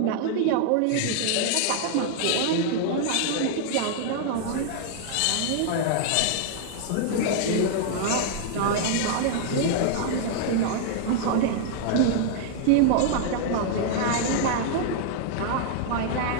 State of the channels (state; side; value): different; both; correlation -0.01